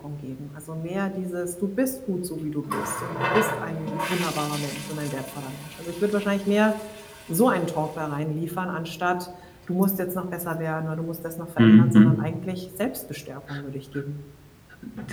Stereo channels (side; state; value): both; identical; correlation 1.00